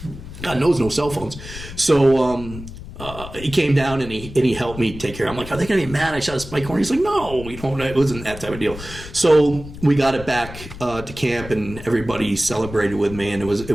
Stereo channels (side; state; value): left; noise; rumble, 13 dB below the sound